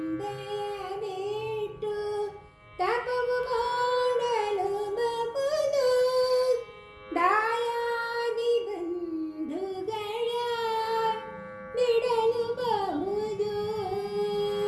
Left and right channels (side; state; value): both; identical; correlation 1.00